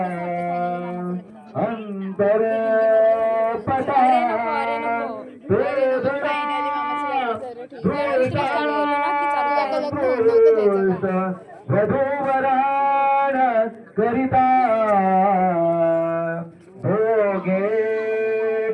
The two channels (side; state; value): both; identical; correlation 1.00